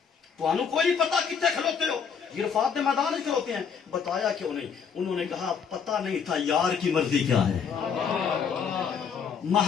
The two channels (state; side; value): quieter; right; 6.6 dB